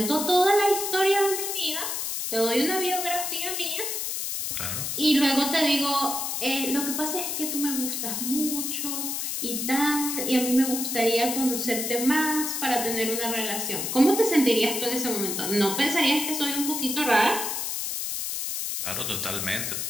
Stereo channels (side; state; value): left; noise; hiss, 2 dB below the sound